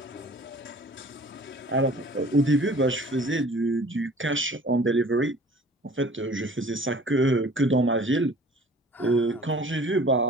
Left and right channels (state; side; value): normal; both; correlation 0.48